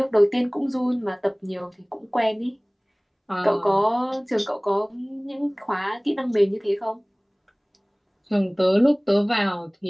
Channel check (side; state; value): both; identical; correlation 1.00